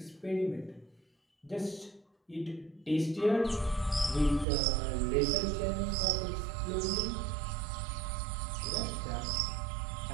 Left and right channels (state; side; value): drops out; left; at 4.5 s